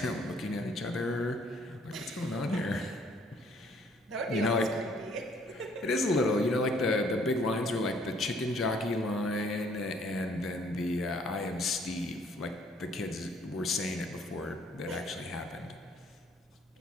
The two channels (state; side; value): normal; both; correlation 0.62